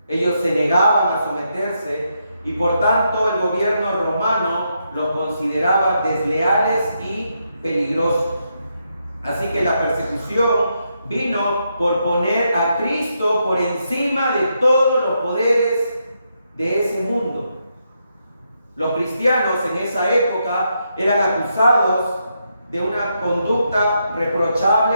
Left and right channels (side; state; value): both; inverted; correlation -0.81